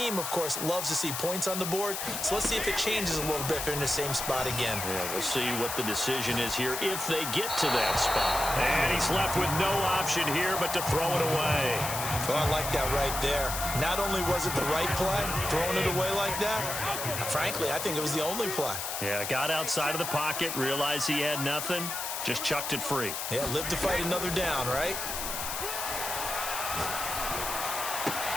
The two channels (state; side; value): noise; left; hiss, 4 dB below the sound